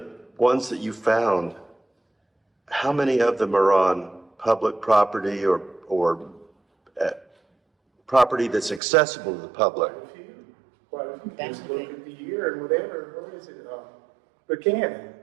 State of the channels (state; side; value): drops out; left; at 8.8 s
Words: ones that you found, how many of them are on public property or property that's accessible to the public? quite a few, just look at the year and whatever, where is it, Buchanan.